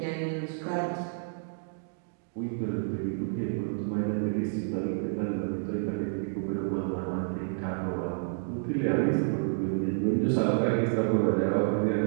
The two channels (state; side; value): silent; left; digital silence